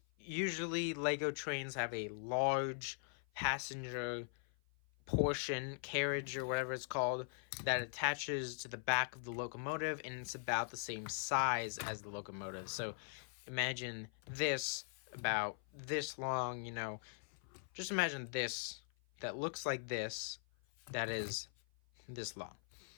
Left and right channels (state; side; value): silent; right; 50 dB below the other